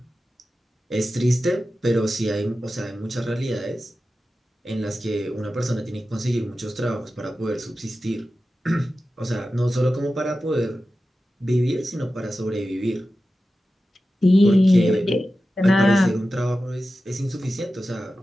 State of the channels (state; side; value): normal; both; correlation 0.93